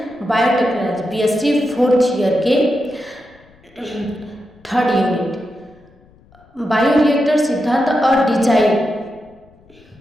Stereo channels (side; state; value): left; noise; rumble, 29 dB below the sound